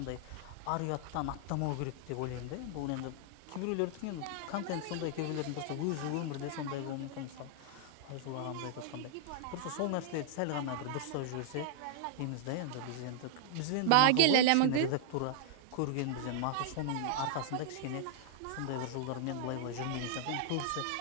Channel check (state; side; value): different; both; correlation -0.01